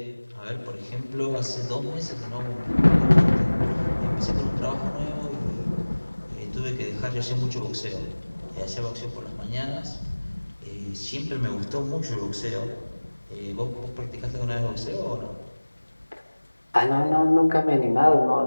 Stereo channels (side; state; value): both; inverted; correlation -1.00